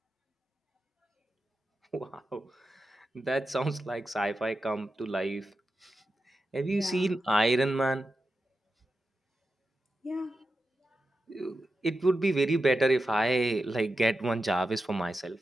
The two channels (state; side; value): normal; both; correlation 0.90